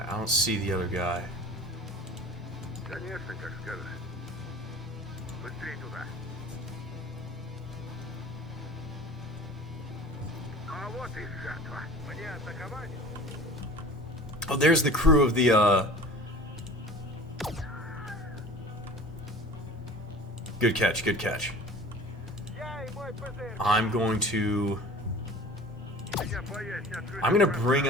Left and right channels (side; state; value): both; normal; correlation 0.41